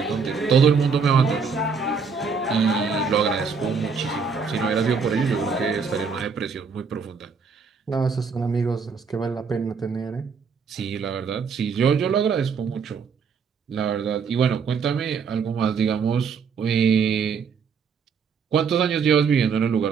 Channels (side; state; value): left; quieter; 5.6 dB